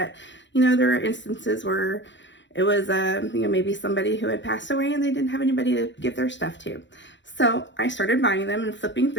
you know, there are instances where it was, you know, maybe somebody who had passed away and they didn't have anybody to give their stuff to. So I started buying them and flipping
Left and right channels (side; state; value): right; late; 0.53 ms